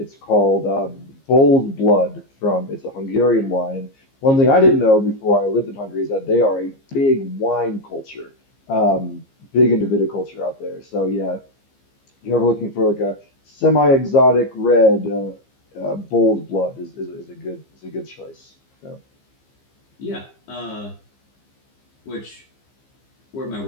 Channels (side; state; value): right; late; 15 ms